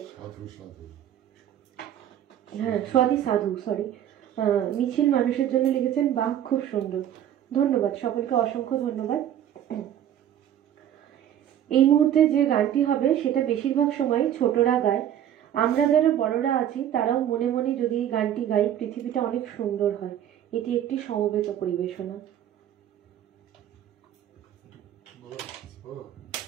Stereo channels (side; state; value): left; quieter; 10.7 dB